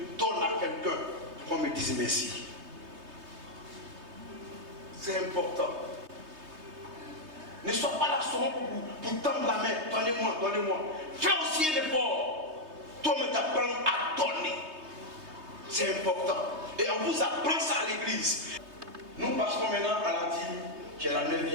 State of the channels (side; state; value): left; late; 3.2 ms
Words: donne à quelqu'un pour qu'on me dise merci. C'est important. Ne sois pas là seulement pour tendre la main. Donnez-moi, donnez-moi. Fais aussi un effort. Toi-même t'apprends à donner. C'est important. Et on vous apprend ça à l'église. Nous passons maintenant à la dîme, qui est la